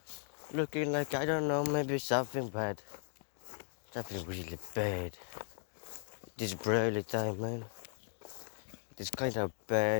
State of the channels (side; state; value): right; silent; 53 dB below the other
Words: Looking like, I don't know, maybe something bad. Something really bad. This early time, man. It's kind of